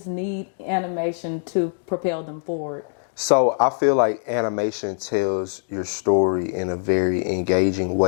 need animation to propel them forward? So I feel like animation tells your story in a very engaging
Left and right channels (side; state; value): right; silent; digital silence